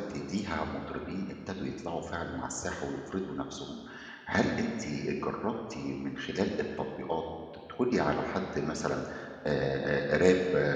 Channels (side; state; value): both; identical; correlation 1.00